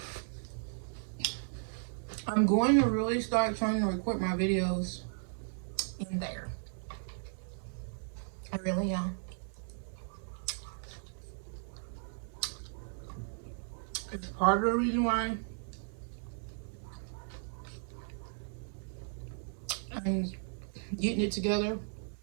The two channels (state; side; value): silent; left; digital silence